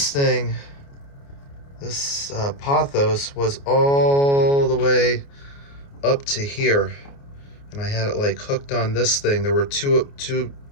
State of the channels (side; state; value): right; late; 29 ms